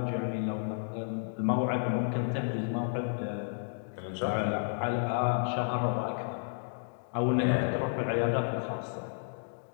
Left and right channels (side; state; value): right; silent; digital silence